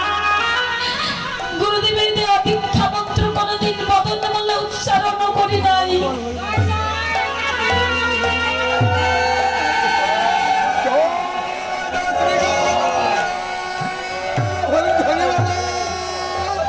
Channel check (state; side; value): identical; both; correlation 1.00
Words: গুরুদেবের দেওয়া দীক্ষা মন্ত্র কোনোদিন বদন বলে উচ্চারণ করি নাই।